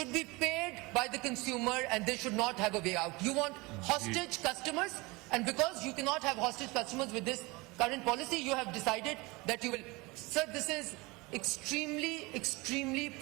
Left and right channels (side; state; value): left; quieter; 24.2 dB